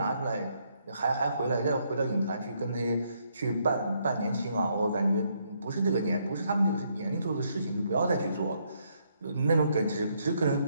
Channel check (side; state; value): both; inverted; correlation -0.73